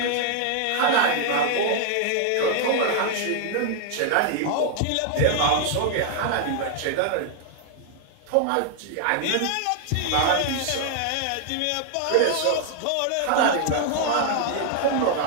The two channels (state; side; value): different; both; correlation 0.00